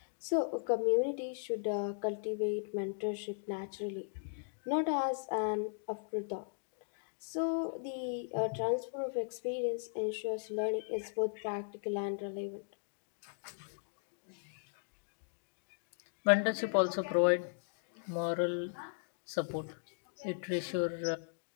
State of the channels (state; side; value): silent; right; digital silence